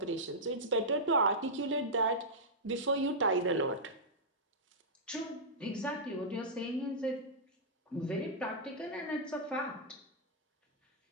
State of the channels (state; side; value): normal; both; correlation -0.11